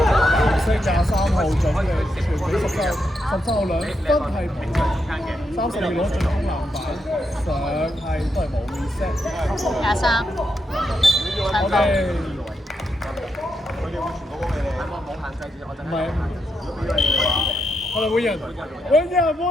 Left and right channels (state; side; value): normal; both; correlation 0.82